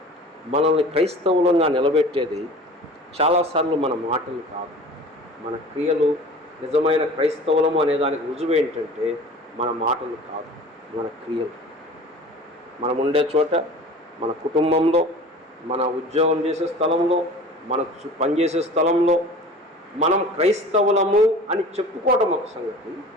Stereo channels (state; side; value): normal; both; correlation 0.41